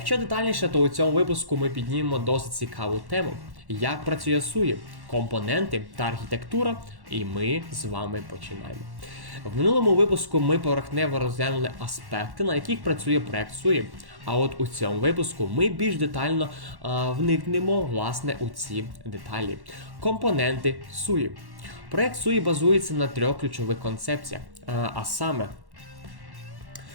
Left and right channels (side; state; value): left; late; 1.1 ms